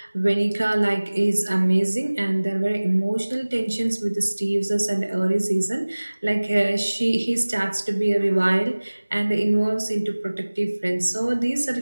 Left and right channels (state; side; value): inverted; both; correlation -1.00